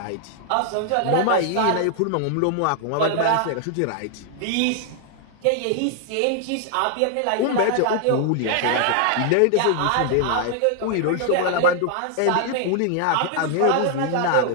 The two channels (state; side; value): different; both; correlation 0.00